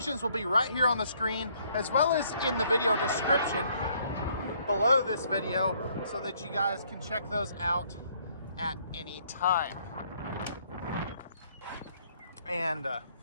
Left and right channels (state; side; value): inverted; both; correlation -0.65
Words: will be right here on the screen as well as in the video description below this video so that you guys can check those out at any time. And